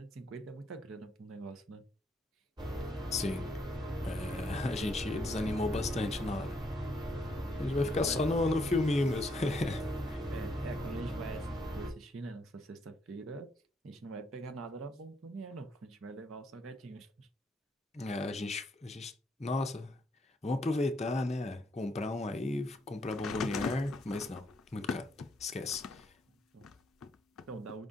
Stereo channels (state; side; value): normal; both; correlation 0.73